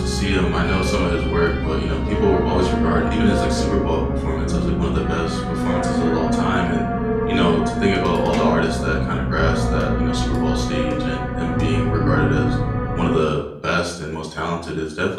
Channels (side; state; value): both; identical; correlation 1.00